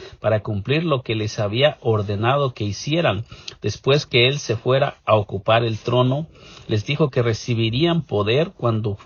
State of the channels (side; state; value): both; identical; correlation 1.00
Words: para cumplir lo que les había ordenado que hicieran. Después que Él se fuera a ocupar el trono, les dijo que recibirían poder cuando